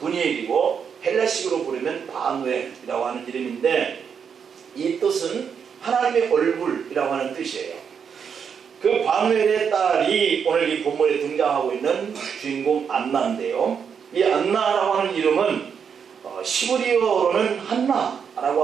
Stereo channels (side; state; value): left; quieter; 7.0 dB